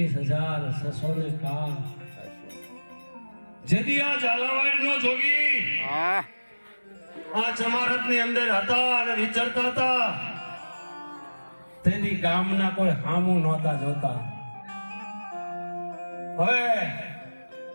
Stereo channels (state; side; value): inverted; both; correlation -1.00